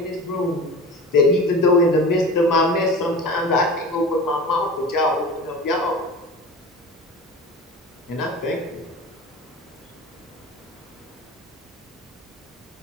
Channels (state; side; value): normal; both; correlation 0.35